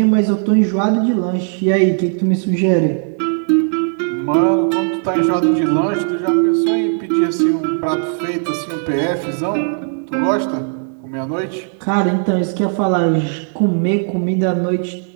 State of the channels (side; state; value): left; silent; 66 dB below the other